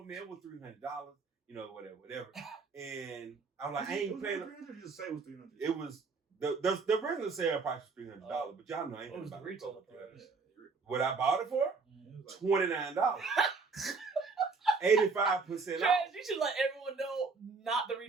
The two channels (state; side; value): quieter; left; 4.4 dB